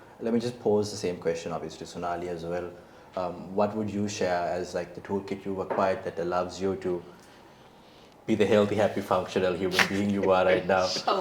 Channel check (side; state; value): both; identical; correlation 1.00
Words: let me just pose the same question obviously to Sonali as well. What would you share as like the toolkit you've acquired that allows you to be the healthy, happy, functional human being you are right now?